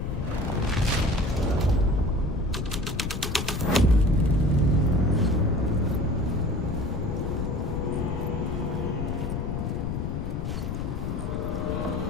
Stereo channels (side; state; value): left; noise; rumble, 3 dB below the sound